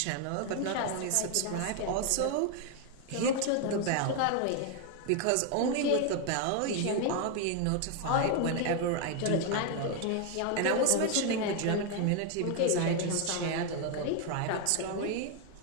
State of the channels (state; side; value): different; both; correlation 0.01